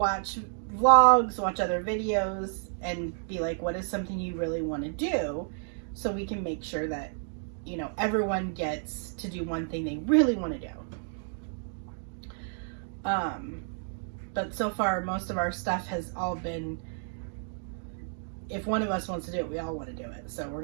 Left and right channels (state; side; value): silent; left; digital silence